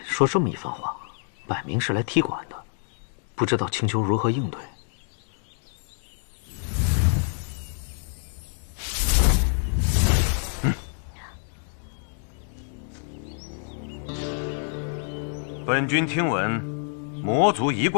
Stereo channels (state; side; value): silent; right; 60 dB below the other